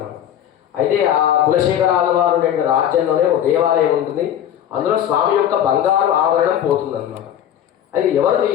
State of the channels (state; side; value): quieter; right; 10.4 dB